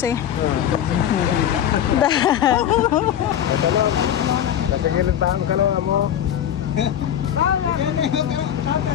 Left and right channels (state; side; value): quieter; right; 10.2 dB